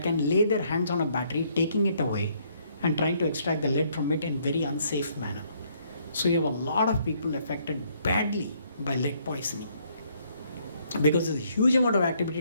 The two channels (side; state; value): both; inverted; correlation -0.68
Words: can lay their hands on a battery, taking it away and trying to extract the lead from it in very unsafe manner. So you have a lot of people affected badly by lead poisoning, because there's a huge amount of